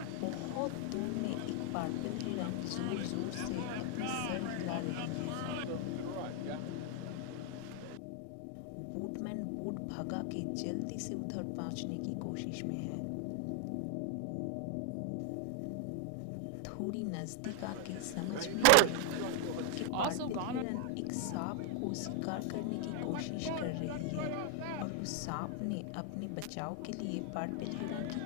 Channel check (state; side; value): different; both; correlation 0.00